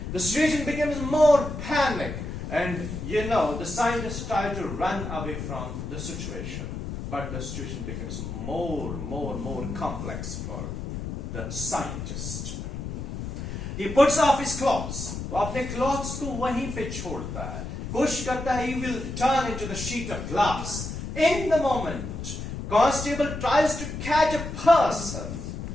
The situation becomes more panic, and the scientists try to run away from the situation. But the situation becomes more complex for the scientist. He puts off his clothes. वो अपने clothes को वहीं पे छोड़ता है. कोशिश करता है, he will turn into the sheet of glass. In the moment, constable tries to catch a person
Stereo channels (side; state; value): left; noise; rumble, 6 dB below the sound